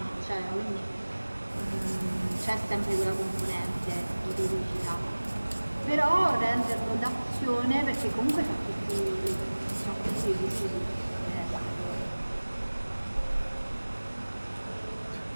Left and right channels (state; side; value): inverted; both; correlation -1.00